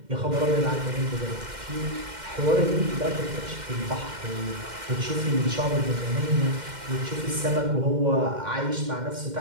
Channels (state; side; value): late; left; 2.1 ms